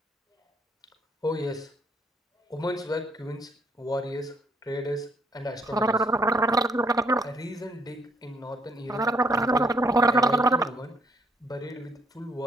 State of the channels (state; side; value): normal; both; correlation 0.68